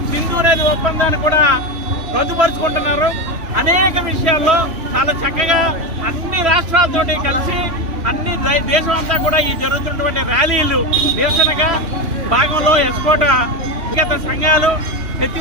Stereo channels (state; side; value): late; left; 3.1 ms